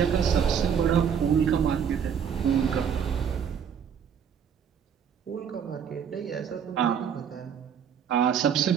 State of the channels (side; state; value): left; quieter; 7.8 dB